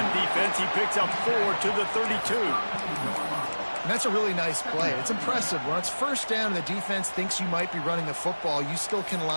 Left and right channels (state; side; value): inverted; both; correlation -1.00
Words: defense. He picks up 4 to the 32. And that's a really nice play. It's impressive. When it's first down and the defense thinks you might be running a football, you still can